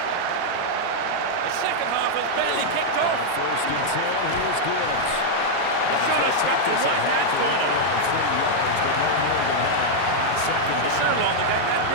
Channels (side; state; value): both; different; correlation -0.01